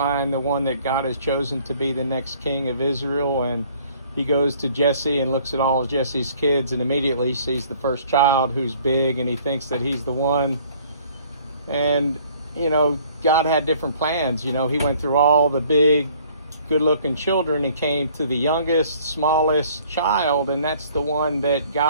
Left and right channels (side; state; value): both; inverted; correlation -0.57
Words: the one that God has chosen to be the next king of Israel, and he goes to Jesse and looks at all of Jesse's kids and immediately sees the first child who's big, and he thinks that he's the one. And God had different plans. He went through all the big, good-looking children and came to the youngest, smallest child, and that's the one that